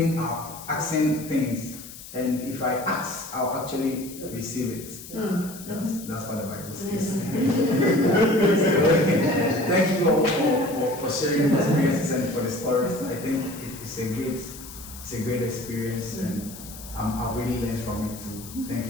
up, asking things. And if I ask, I'll actually receive it. That's what the Bible says. Thank you all for sharing the experiences and for the stories. I think it's a great experience, and I've really learned from it too. Thank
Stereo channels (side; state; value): left; noise; hiss, 15 dB below the sound